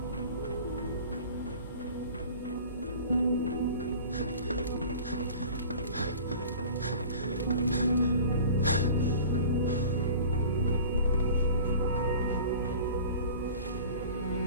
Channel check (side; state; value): both; inverted; correlation -0.41